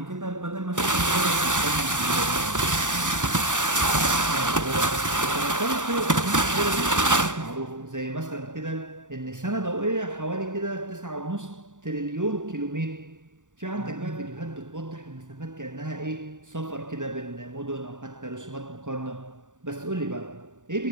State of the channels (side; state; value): left; late; 0.86 ms